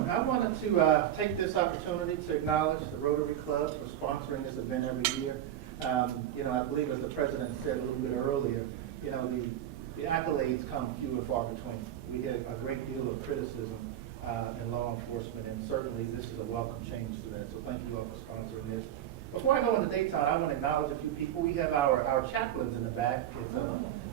I wanted to take this opportunity to acknowledge the Rotary Club for sponsoring this event every year. I believe as the president said a little bit earlier, the accolades come few and far between. We hear a great deal of criticism in law enforcement, and certainly this is a welcome change to that. So thank you all for sponsoring this. Before I go into Daton, I want to acknowledge a few people. We have our chaplains in the back. It's a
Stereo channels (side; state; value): left; quieter; 11.2 dB